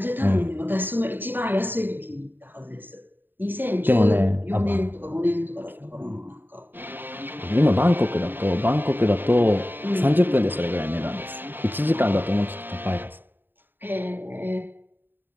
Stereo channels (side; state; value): left; late; 0.094 ms